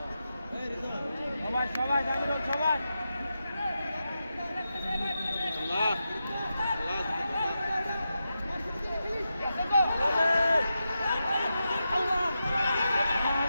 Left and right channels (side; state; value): both; inverted; correlation -0.89